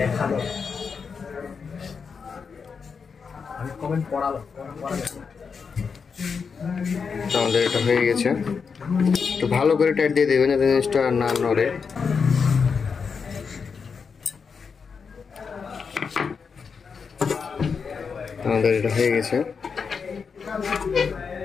আমাদের এটা হয়ে গেছে। একটু ভালো করে টাইট দিয়ে দেবেন, জিনিসটা না নড়ে। আমাদের এটা হয়ে গেছে।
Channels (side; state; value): right; quieter; 5.7 dB